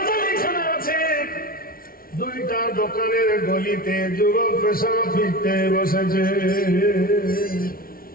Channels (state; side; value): late; right; 0.43 ms